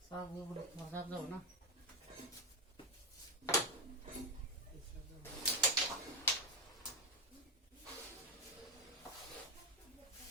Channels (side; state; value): both; normal; correlation 0.09